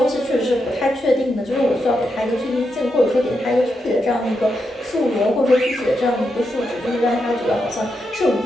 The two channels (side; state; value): both; normal; correlation 0.84